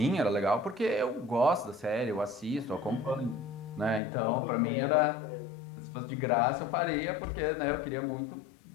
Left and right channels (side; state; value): right; drops out; at 4.0 s